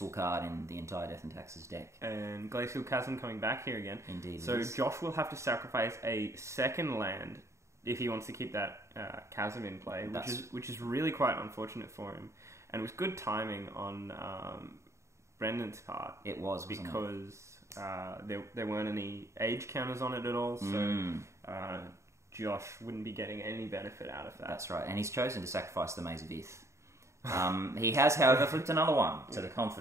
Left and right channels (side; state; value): left; late; 0.14 ms